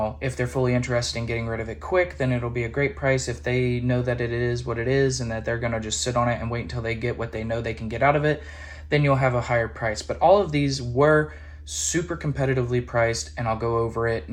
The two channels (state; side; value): identical; both; correlation 1.00